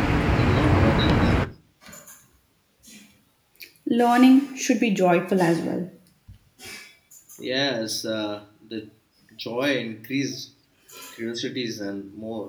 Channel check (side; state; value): both; identical; correlation 1.00